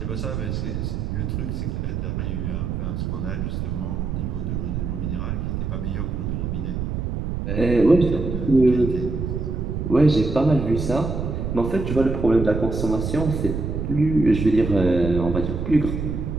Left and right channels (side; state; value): right; noise; rumble, 3 dB below the sound